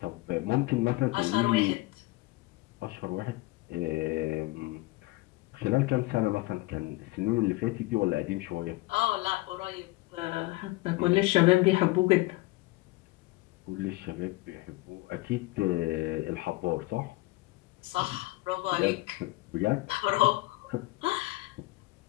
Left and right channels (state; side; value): quieter; right; 20.9 dB